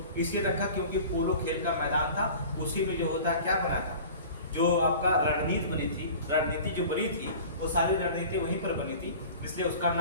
इसलिए रखा क्योंकि पोलो खेल का मैदान था, उसी में जो होता है क्या बना था, जो आपका रणनीति जो बनी थी वो सारी रणनीति वहीं पर बनी थी, इसलिए उसका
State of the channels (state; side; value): inverted; both; correlation -0.41